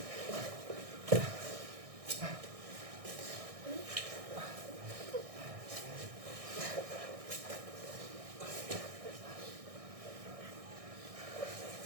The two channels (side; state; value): left; late; 1.6 ms